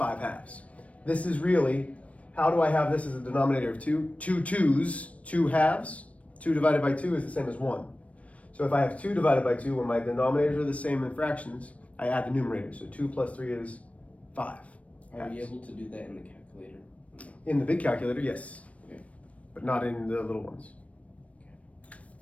This is really, how do I have this as a denominator of 2? 2 2's, 2/2. 2 divided by 2 is the same as 1. So if I have 2 divided by 2, when my denominators are the same in fractions, I add the numerator. So 2 plus 3 is 5. Are we able to do that in the calculator? In the big calculator, yes. Okay. but not in the little ones.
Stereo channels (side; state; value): right; late; 0.065 ms